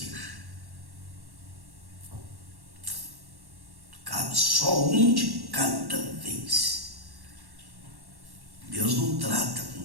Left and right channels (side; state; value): left; late; 1.1 ms